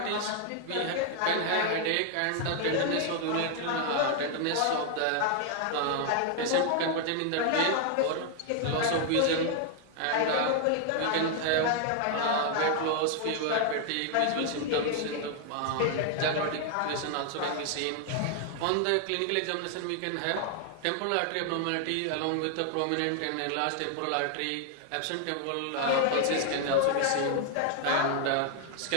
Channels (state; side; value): different; both; correlation 0.00